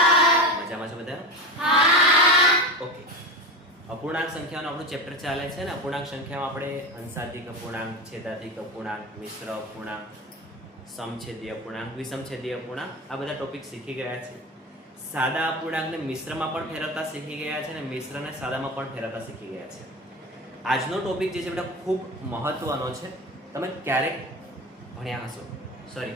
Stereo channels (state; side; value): normal; both; correlation 0.25